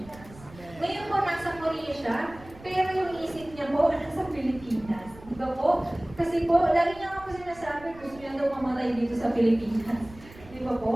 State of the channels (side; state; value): right; noise; rumble, 20 dB below the sound